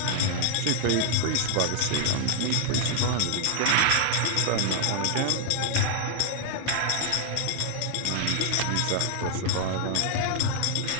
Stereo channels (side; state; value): both; different; correlation 0.00